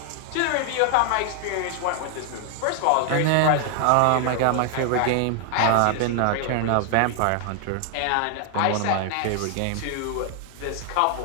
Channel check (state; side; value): different; both; correlation 0.00